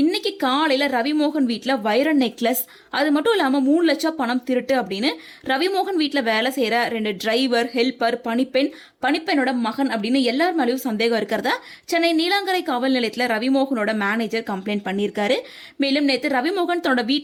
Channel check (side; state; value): both; identical; correlation 1.00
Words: இன்னைக்கு காலையில ரவிமோகன் வீட்டுல வைர நெக்லஸ், அது மட்டும் இல்லாம 3 லட்சம் பணம் திருட்டு அப்படின்னு ரவிமோகன் வீட்டுல வேலை செய்யற 2 டிரைவர், ஹெல்பர், பணிப்பெண்ணோட மகன் அப்படின்னு எல்லார் மேலேயும் சந்தேகம் இருக்கிறதா சென்னை நீலாங்கரை காவல் நிலையத்துல ரவிமோகனோட மேனேஜர் கம்ப்ளைண்ட் பண்ணியிருக்காரு. மேலும் நேற்று ரவிமோகன் தன்னோட